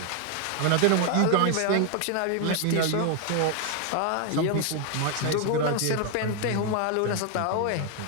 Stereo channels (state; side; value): different; both; correlation 0.00